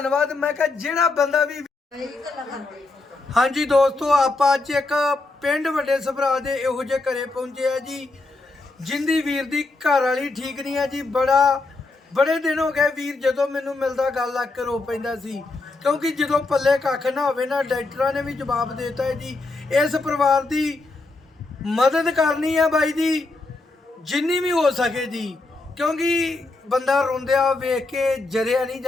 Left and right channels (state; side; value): quieter; right; 3.4 dB